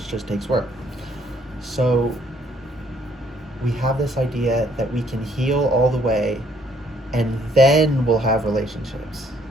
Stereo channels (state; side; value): normal; both; correlation 0.65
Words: just takes work. So we have this idea that we can heal all the way, and then we'll have relationships.